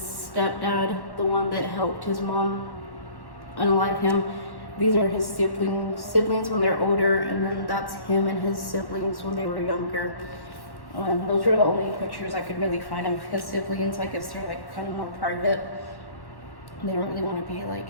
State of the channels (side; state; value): right; late; 1.1 ms